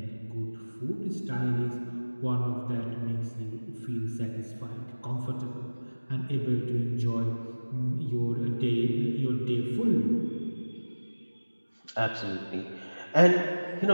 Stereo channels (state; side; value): inverted; both; correlation -1.00